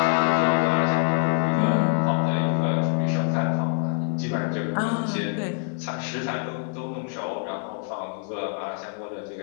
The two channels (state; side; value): quieter; right; 39.0 dB